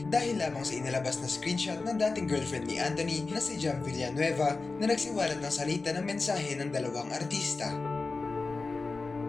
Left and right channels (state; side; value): quieter; right; 3.9 dB